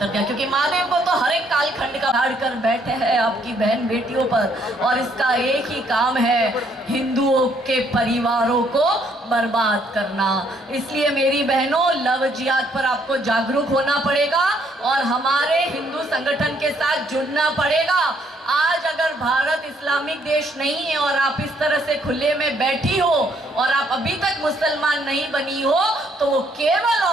दिया, क्योंकि महादेव को तो हर एक कालखंड का हाड़ कर बैठे हैं आपकी बहन बेटियों पर, और इसका एक ही काम है हिंदुओं के परिवारों को बर्बाद करना। इसलिए मेरी बहनों, लव जिहाद पर आपको जागरूक होना पड़ेगा और हमारे हिंदू संगठन के साथ जुड़ना पड़ेगा। आज अगर भारत इस्लामिक देश नहीं है और आप इस तरह से खुले में बैठी हो और आप अभी तक मुसलमान नहीं बनी हो, तो वो केवल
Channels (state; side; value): normal; both; correlation 0.68